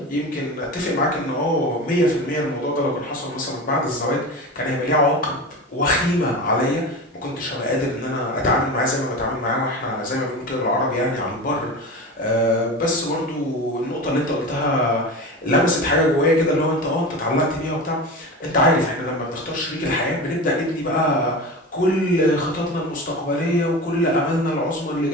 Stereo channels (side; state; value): both; normal; correlation 0.28